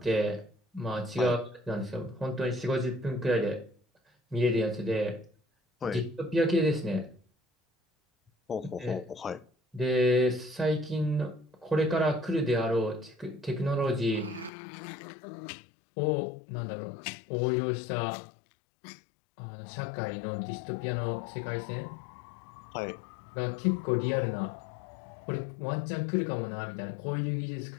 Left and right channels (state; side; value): drops out; right; at 14.5 s